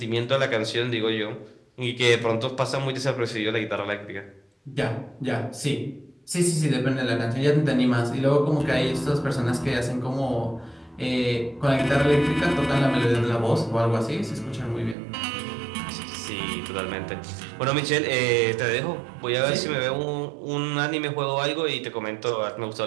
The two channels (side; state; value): left; drops out; at 15.0 s